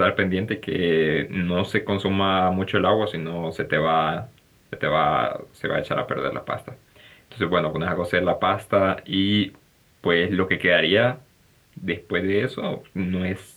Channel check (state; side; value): identical; both; correlation 1.00